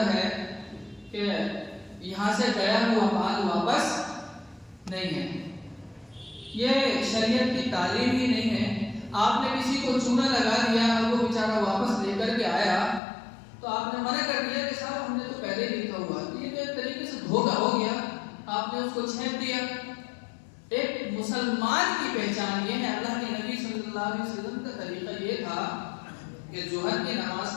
ہے کہ یہاں سے گیا ہوا مال واپس نہیں ہے. یہ شریعت کی تعلیم ہی نہیں ہے. آپ نے کسی کو چونا لگا دیا اور وہ بیچارہ واپس لے کر کے آیا تو آپ نے منع کر دیا کہ صاحب ہم نے تو پہلے ہی لکھا ہوا. یہ تو ایک طریقے سے دھوکہ ہو گیا، آپ نے اس کو چھینپ دیا. ایک مسلمان کی پہچان یہ ہے. اللہ کے نبی صلی اللہ علیہ وسلم کا طریقہ یہ تھا کہ ظہر کی نماز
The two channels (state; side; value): drops out; right; at 13.0 s